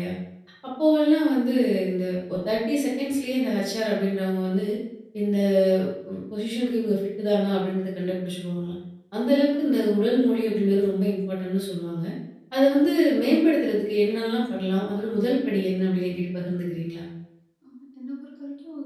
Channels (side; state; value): both; identical; correlation 1.00